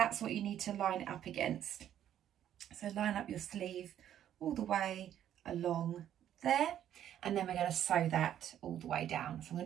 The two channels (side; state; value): left; quieter; 10.7 dB